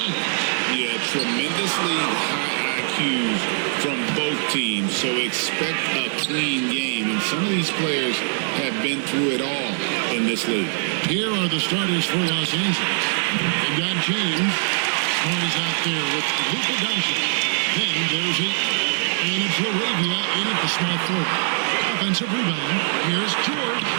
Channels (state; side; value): silent; left; 64 dB below the other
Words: Yeah, tremendously high IQs from both teams, so expect a clean game. And some of these players have been through it all in this league. Here are the starters for Los Angeles. They've got James. Smart is out there with Luka Doncic. Then there's Ayton. And it's Laravia in at the small forward. Offensive rebound. Here's George.